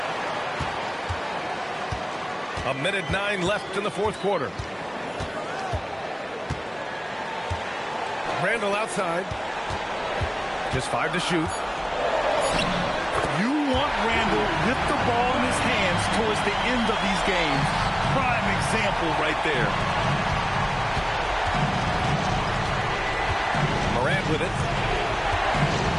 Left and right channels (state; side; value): identical; both; correlation 1.00